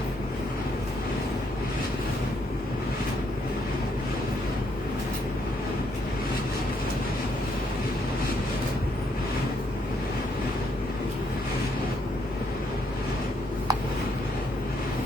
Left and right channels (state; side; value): normal; both; correlation 0.73